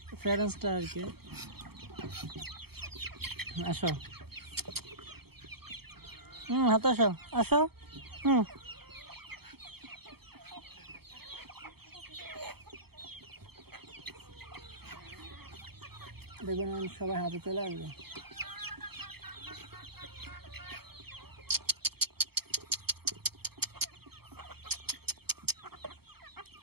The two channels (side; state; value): left; late; 0.96 ms